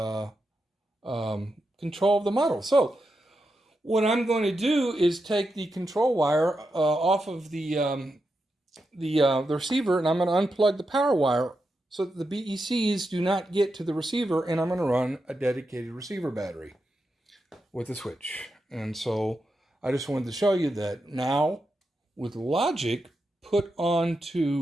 control of the model. So what I'm going to do is take the control wire off of the receiver, and I'm going to unplug the power wire so that the BECs do not get to the receiver, and I'm going to run a dedicated receiver battery with a switch. And so I just wanted to show you that now with logic put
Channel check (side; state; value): both; normal; correlation 0.87